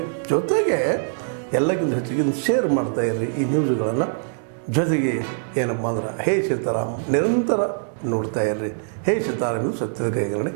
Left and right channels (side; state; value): left; silent; digital silence